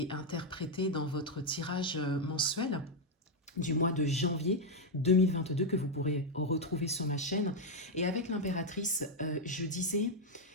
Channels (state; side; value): normal; both; correlation 0.01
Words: interprétée dans votre tirage mensuel du mois de janvier 2022 que vous pourrez retrouver sur ma chaîne. Et avec l'impératrice, je disais